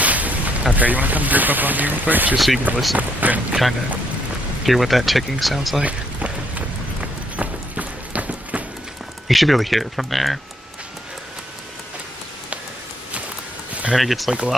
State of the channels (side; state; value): both; normal; correlation 0.71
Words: Okay, you want to come group up on me real quick, just so you can listen and kind of hear what that ticking sounds like? You should be able to hear it from there. And then it gets, like,